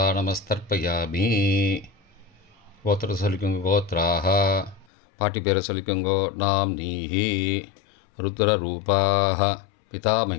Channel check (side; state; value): right; drops out; at 4.9 s